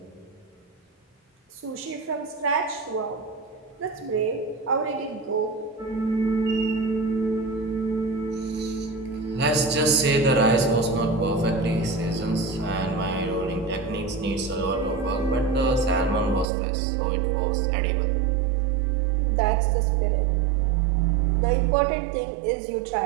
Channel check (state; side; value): drops out; left; at 16.4 s